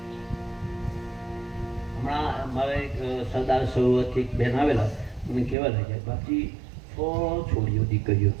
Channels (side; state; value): left; drops out; at 5.6 s